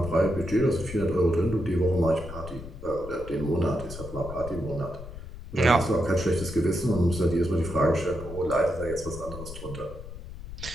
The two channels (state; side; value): noise; left; rumble, 12 dB below the sound